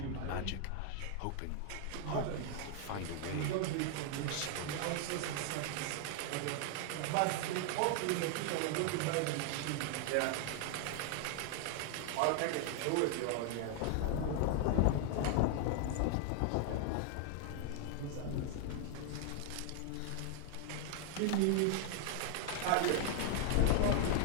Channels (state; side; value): different; both; correlation 0.00